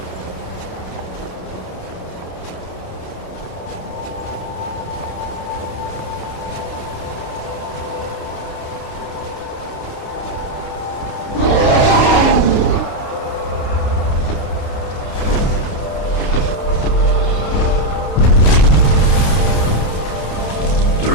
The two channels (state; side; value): late; right; 29 ms